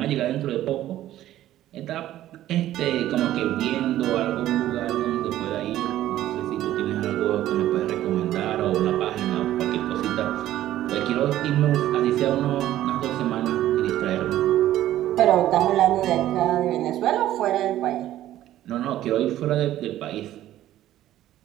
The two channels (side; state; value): left; quieter; 13.4 dB